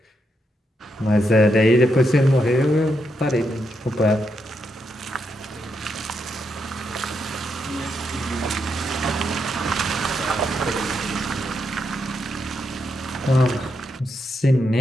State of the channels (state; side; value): normal; both; correlation 0.81